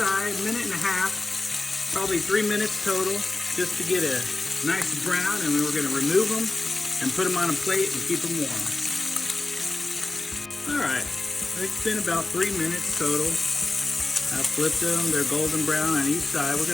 minute and a half, probably 3 minutes total, just to get a nice brown. And then we're going to remove them and put them on a plate and keep them warm. All right, it's been about 3 minutes total. I flipped them, they're golden brown on each side. We're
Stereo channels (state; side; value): quieter; right; 3.2 dB